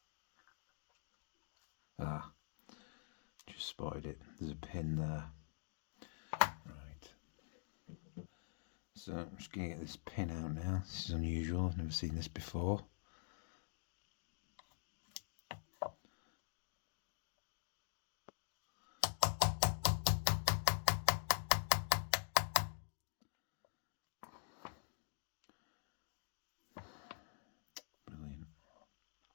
Ah, just spotted it. There's a pin there. Right. So I'm just going to get this pin out now. This is unusual. I've never seen this before.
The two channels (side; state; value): right; silent; digital silence